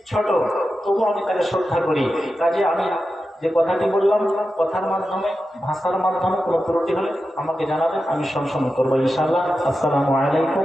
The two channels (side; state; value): both; normal; correlation 0.91